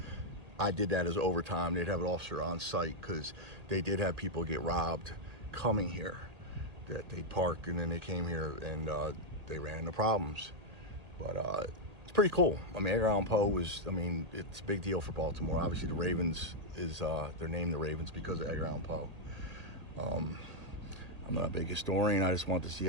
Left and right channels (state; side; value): late; left; 1.8 ms